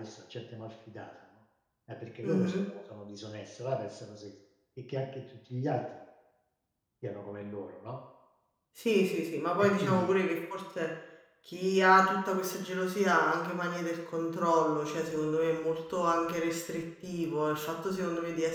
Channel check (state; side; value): identical; both; correlation 1.00